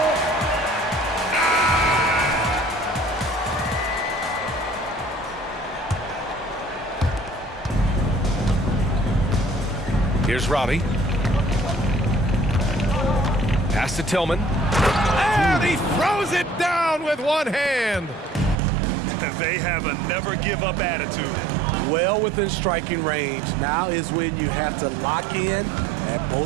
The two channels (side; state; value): left; drops out; at 18.6 s